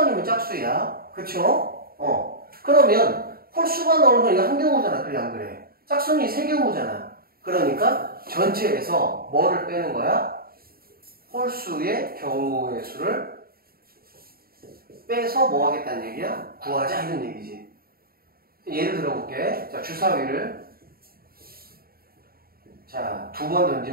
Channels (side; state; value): left; late; 0.43 ms